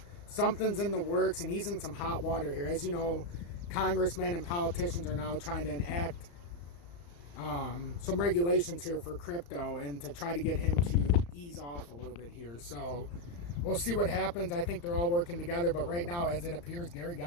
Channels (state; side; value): late; right; 35 ms